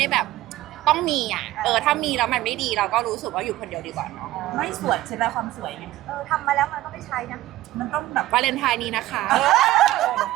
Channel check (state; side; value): quieter; left; 15.8 dB